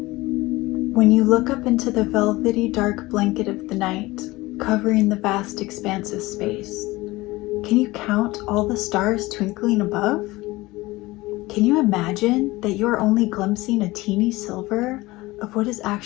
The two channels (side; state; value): right; quieter; 20.2 dB